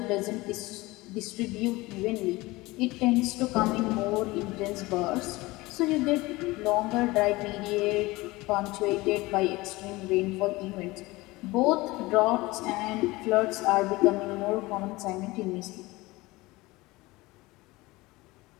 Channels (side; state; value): right; quieter; 21.0 dB